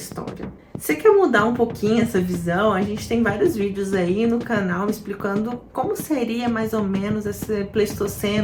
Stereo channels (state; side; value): identical; both; correlation 1.00